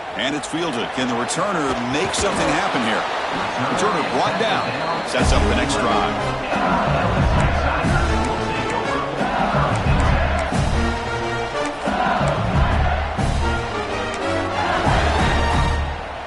And it's fielded. Can the returner make something happen here? Returner brought down. Sets up the next drive.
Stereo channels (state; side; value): identical; both; correlation 1.00